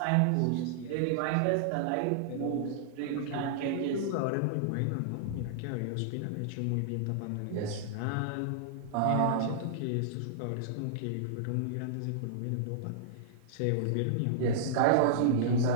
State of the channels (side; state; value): both; different; correlation -0.02